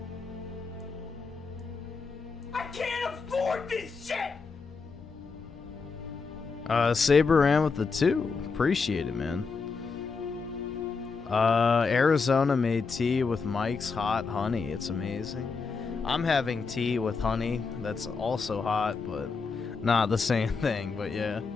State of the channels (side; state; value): right; quieter; 4.8 dB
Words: I can't afford this shit! Saber ran with the 2. Appreciate it, man. Arizona made tea with Mike's hot honey. It's amazing. I'm having tea with honey that's also hot, but not the same thing. But yeah,